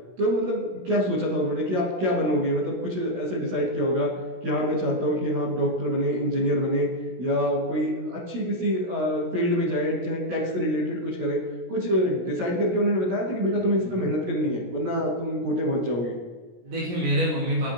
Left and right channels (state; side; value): late; left; 16 ms